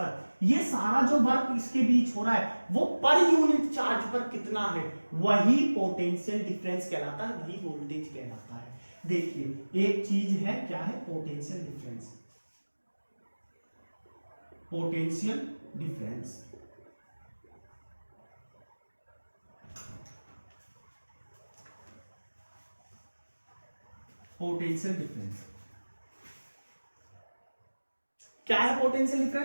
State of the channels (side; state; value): both; inverted; correlation -1.00